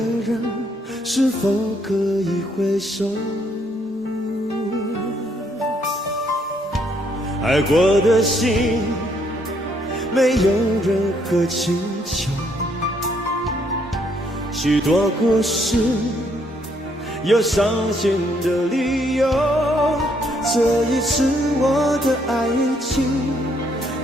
人，是否可以回首？爱过的心，没有任何请求。许多故事，有伤心的理由。这一次我的爱情，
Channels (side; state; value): both; normal; correlation 0.70